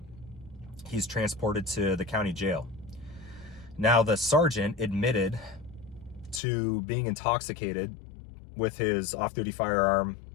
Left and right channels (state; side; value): drops out; right; at 6.4 s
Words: he's transported to the county jail. Now, the sergeant admitted to being intoxicated with his off-duty firearm